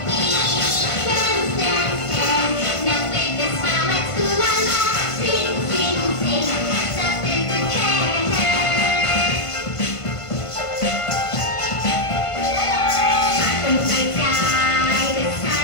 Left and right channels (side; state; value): right; late; 1.5 ms